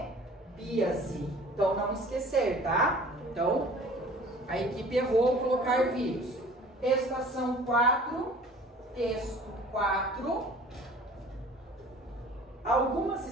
Então não esquecer, tá? Então a equipe errou ao colocar vírus. Estação 4, texto 4. Algumas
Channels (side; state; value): both; normal; correlation 0.47